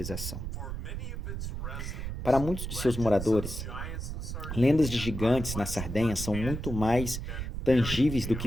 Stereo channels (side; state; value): right; noise; rumble, 5 dB below the sound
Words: Para muitos de seus moradores, lendas de gigantes na Sardenha são muito mais tangíveis do